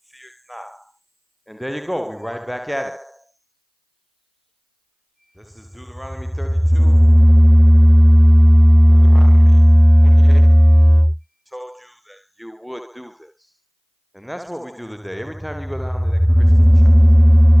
feared not. And there you go. We're right back at it. This is Deuteronomy 32. Would do this. And that's what we do today. Every time you go down to that Christian church,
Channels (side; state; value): both; identical; correlation 1.00